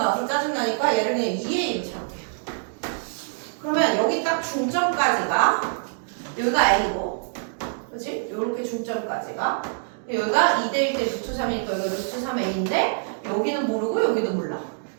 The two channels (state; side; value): silent; left; digital silence